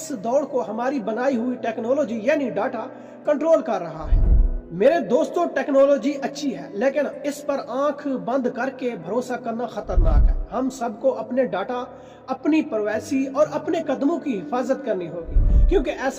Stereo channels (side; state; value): both; identical; correlation 1.00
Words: دوڑ کو ہماری بنائی ہوئی ٹیکنالوجی یعنی ڈاٹا کنٹرول کر رہا ہے۔ میرے دوستوں، ٹیکنالوجی اچھی ہے، لیکن اس پر آنکھ بند کر کے بھروسہ کرنا خطرناک ہے۔ ہم سب کو اپنے ڈاٹا، اپنی پرائیویسی اور اپنے قدموں کی حفاظت کرنی ہوگی، کیونکہ